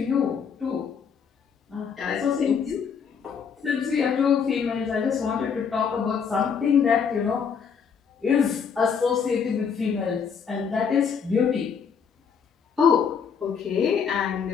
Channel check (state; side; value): quieter; right; 6.6 dB